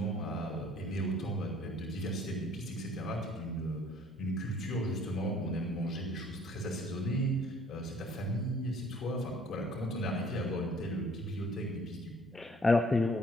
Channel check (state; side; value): normal; both; correlation 0.57